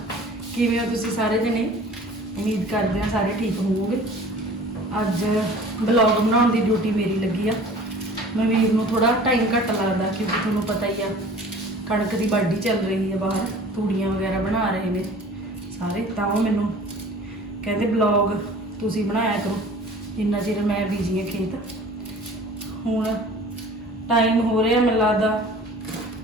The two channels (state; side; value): normal; both; correlation 0.45